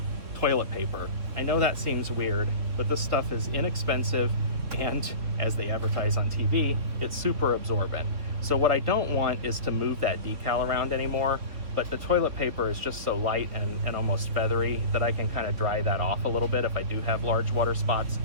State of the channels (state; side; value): late; left; 3.5 ms